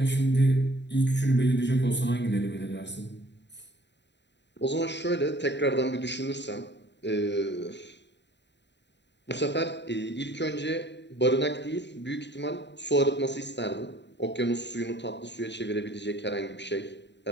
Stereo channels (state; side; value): late; right; 0.51 ms